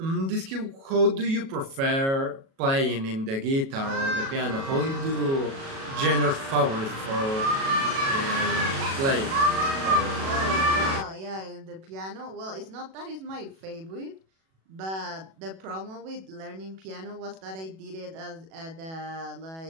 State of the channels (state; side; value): late; left; 37 ms